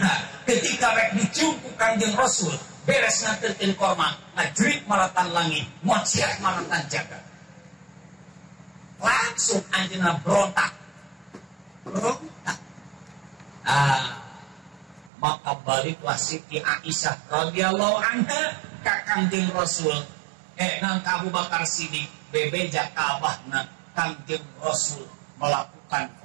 ketika rek dicium ku Kangjeng Rasul beres nganterkeun korma ngajrit maratan langit muciat maratan jagat, langsung anjeunna berontak. Maka baliklah Siti Aisyah radhiyallahu anha ka Kangjeng Rasul, nang Abu Bakar Siddiq bebeja ka abahna Kangjeng Rasul melakukan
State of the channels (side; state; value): left; drops out; at 15.1 s